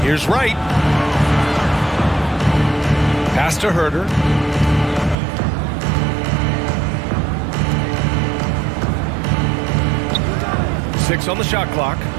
Here's Wright. Pass to Herder. Six on the shot clock.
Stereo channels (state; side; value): drops out; left; at 5.2 s